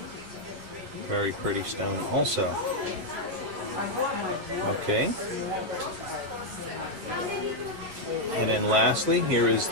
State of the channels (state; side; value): late; left; 11 ms